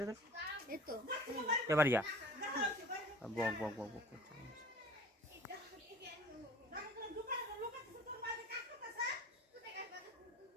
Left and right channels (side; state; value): both; normal; correlation 0.44